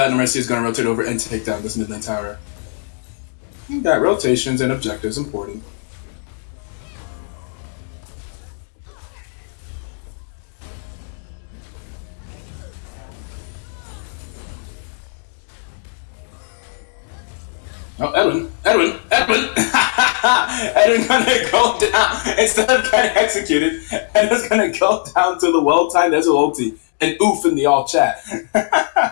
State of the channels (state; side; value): silent; right; digital silence